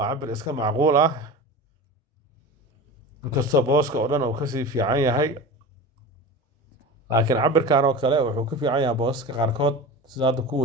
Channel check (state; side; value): normal; both; correlation 0.31